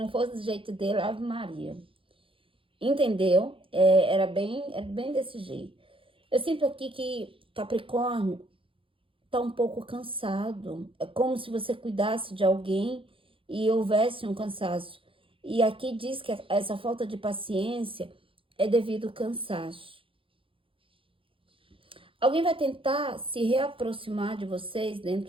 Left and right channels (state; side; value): late; left; 0.26 ms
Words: fosse do jeito dele, Ave Maria. Entendeu? Era bem desse jeito. Eu sinto aqui que Capricórnio tá um pouco cansado. É como se você cuidasse de alguém e houvesse um cansaço. E aqui diz que essa falta de paciência é devido ao cansaço. Alguém vai tentar se reaproximar de vocês